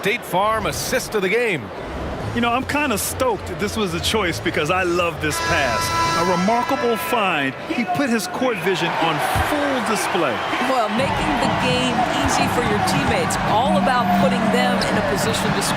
Farm assist of the game. You know, I'm kind of stoked this was a choice because I love this pass. A remarkable find. He put his court vision on full display. Well, making the game easy for your teammates. All about putting them in a position to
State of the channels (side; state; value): both; identical; correlation 1.00